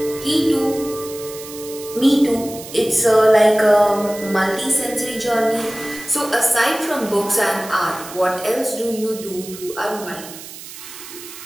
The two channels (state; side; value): noise; right; hiss, 14 dB below the sound